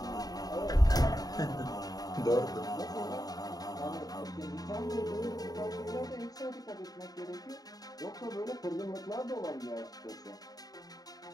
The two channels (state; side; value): late; right; 0.18 ms